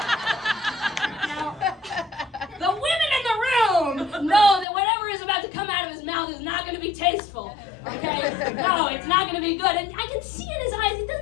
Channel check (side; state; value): right; drops out; at 4.7 s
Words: the women in the room know that whatever is about to come out of his mouth is not going to be tasteful, okay? No, it's not going to be good. And I can see in his eyes, it